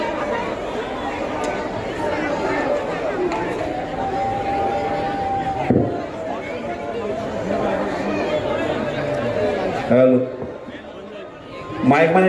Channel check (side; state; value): both; identical; correlation 1.00